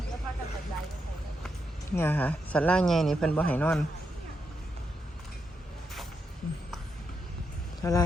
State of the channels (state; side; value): normal; both; correlation 0.83